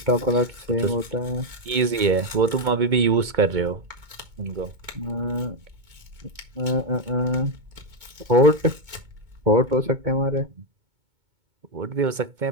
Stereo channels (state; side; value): late; left; 2.2 ms